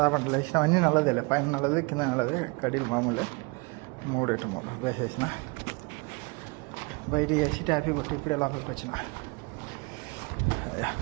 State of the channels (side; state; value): left; quieter; 29.0 dB